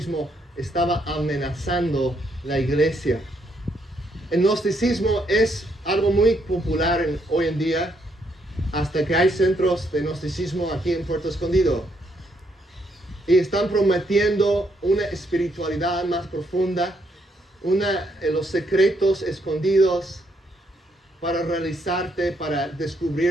estaba amenazando la iglesia. El gnosticismo es algo muy popular hoy en día, hasta que hay centros de gnosticismo aquí en Puerto Escondido. Y están prometiendo una espiritualidad más profunda, los secretos escondidos para realizarte, para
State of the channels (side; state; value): both; normal; correlation 0.74